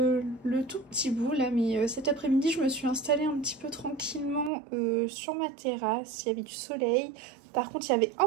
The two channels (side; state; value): left; drops out; at 4.5 s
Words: tout petit bout là, mais cet après-midi je me suis installée un petit peu tranquillement sur ma terrasse. Il y avait du soleil, par contre il y avait